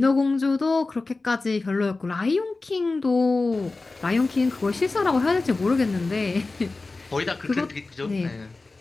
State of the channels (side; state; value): right; quieter; 3.5 dB